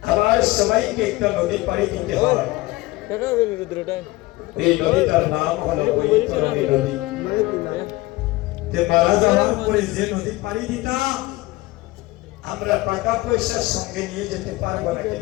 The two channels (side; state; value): right; quieter; 19.9 dB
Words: আবার সবাইকে একটা নদী পাড়ি দিতে হয়। টাকা হবে রুদ্রটা এই নদীটার নাম হলো বৈতরণী নদী। তে মারা যাওয়ার পরে যে নদী পাড়ি দিতাম, আমরা টাকা পয়সার সঙ্গে নিয়ে যেতে পারবো না কি